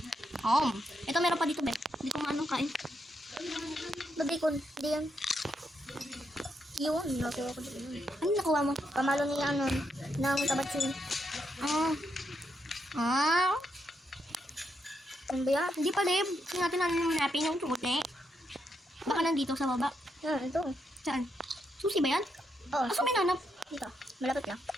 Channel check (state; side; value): normal; both; correlation 0.80